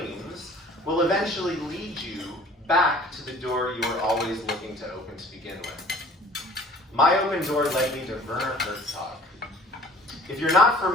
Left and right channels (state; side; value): normal; both; correlation 0.50